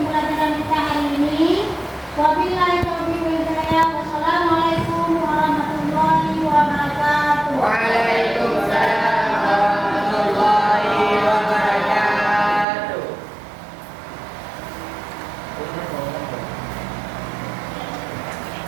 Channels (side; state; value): left; drops out; at 12.7 s